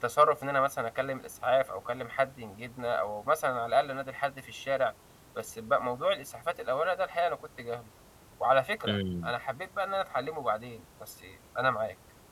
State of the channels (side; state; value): both; identical; correlation 1.00